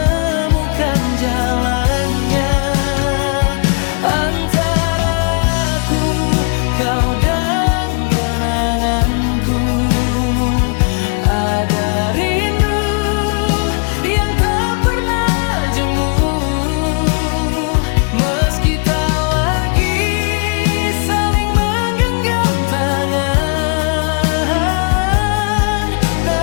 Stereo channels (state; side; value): quieter; right; 37.0 dB